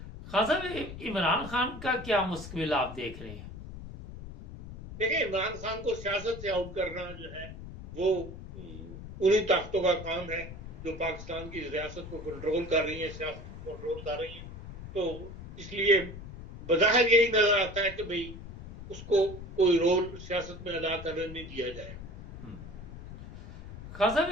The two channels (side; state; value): left; noise; rumble, 12 dB below the sound